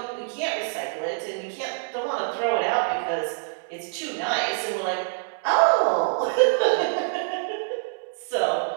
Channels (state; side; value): silent; left; digital silence